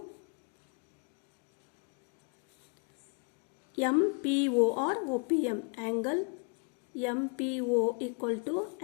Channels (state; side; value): quieter; right; 35.0 dB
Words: MPO or OPM, angle MPO equal to